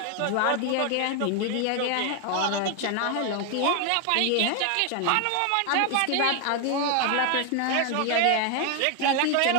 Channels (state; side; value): different; both; correlation 0.01